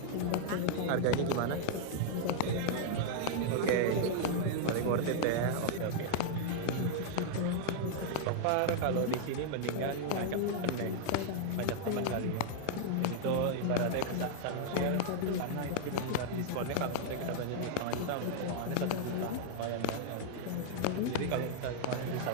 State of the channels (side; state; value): both; different; correlation -0.01